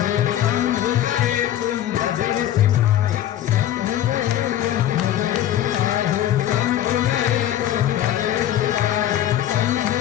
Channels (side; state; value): right; quieter; 11.9 dB